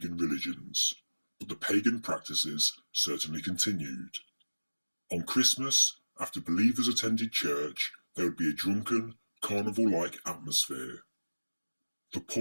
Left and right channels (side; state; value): both; inverted; correlation -1.00